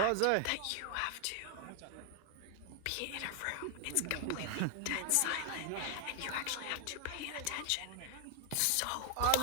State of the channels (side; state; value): both; different; correlation 0.00